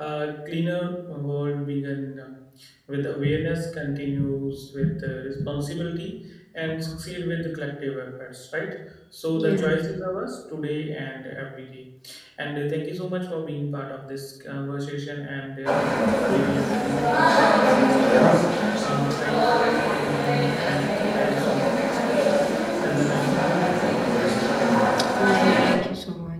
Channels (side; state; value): both; identical; correlation 1.00